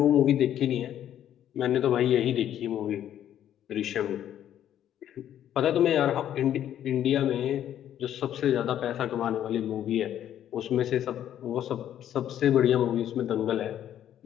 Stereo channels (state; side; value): quieter; right; 10.8 dB